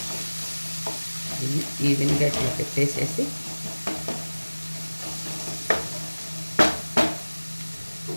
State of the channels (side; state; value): both; inverted; correlation -1.00